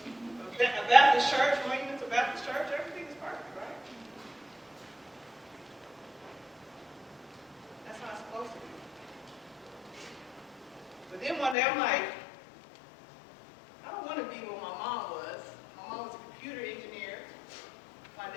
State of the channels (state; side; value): drops out; right; at 11.6 s